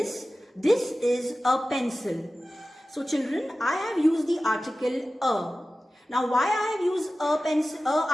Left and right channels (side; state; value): both; normal; correlation 0.95